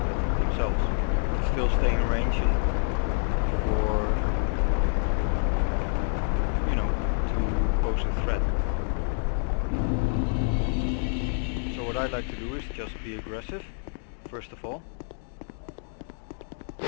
bit themselves, but still stay in range and for, you know, to pose a threat. So what I like to do is just be aggressive, first of all,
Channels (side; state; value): right; silent; digital silence